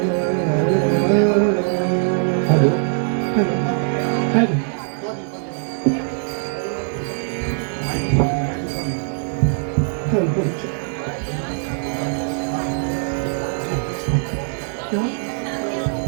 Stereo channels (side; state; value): left; silent; digital silence